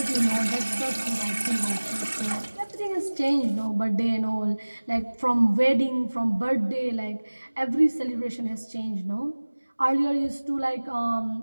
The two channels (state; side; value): inverted; both; correlation -1.00